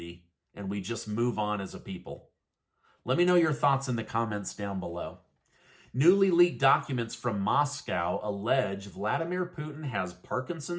and we just move on as a people? Let me know your thoughts in the comments down below. Newly leaked documents from Moscow allege Vladimir Putin has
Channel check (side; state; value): both; identical; correlation 1.00